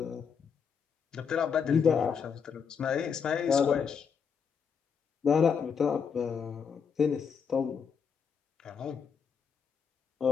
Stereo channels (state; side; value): quieter; right; 6.5 dB